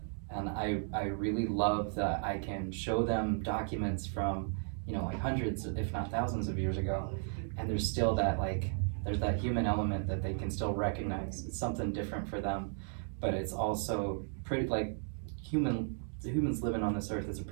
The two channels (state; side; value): silent; left; 54 dB below the other